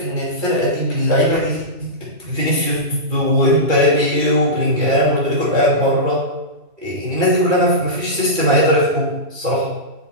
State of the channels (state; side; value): late; left; 2.3 ms